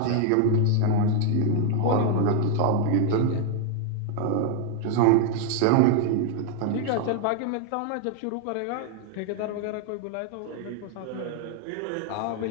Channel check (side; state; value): both; different; correlation 0.00